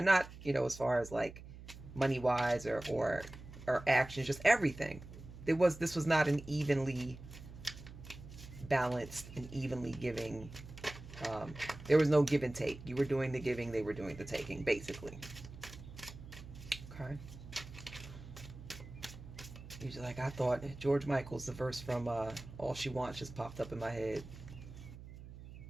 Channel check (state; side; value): noise; right; hum, 15 dB below the sound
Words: not, you know, as far as like money wise or actions, just everything. This was not an evenly balanced and evenly giving. There was no give and take. You were doing the giving, they were doing the taking, basically. Okay. Usually, like, I thought George Michael's, the verse from All She Wants just popped up in my head.